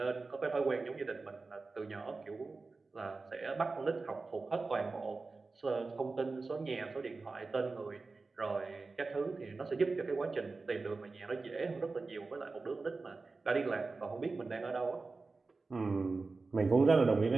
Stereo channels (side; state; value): left; quieter; 3.9 dB